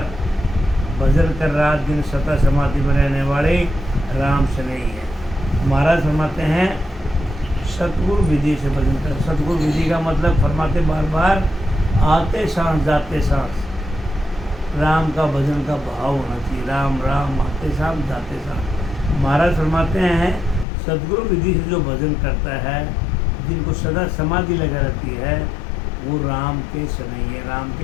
भजन कर रात दिन सता समाधि में रहने वाले राम स्नेही है। महाराज फरमाते हैं सतगुरु विधि से भजन कर। सतगुरु विधि का मतलब फरमाते बार बार आते सांस जाते सांस राम का भजन का भाव होना चाहिए। राम राम आते सांस जाते सांस। महाराज फरमाते हैं सतगुरु विधि से जो भजन करता है, जिनको सदा समाधि लगा रहती है, वो राम के स्नेही है, राम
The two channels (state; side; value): drops out; right; at 20.7 s